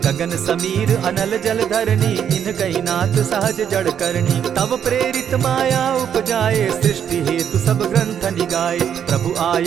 गगन समीर अनल जल धरनी, इन कही नाथ सहज जड़ करनी। तब प्रेरित माया उपजाए, सृष्टि हेतु सब ग्रंथ निगाए। प्रभु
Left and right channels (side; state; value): left; quieter; 8.7 dB